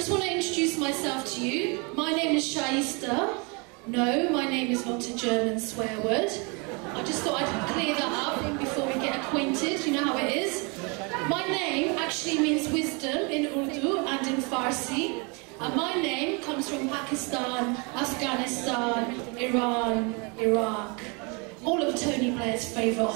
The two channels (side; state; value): left; quieter; 31.4 dB